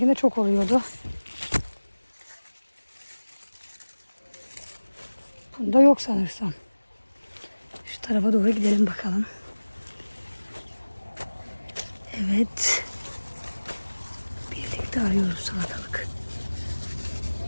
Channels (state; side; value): inverted; both; correlation -1.00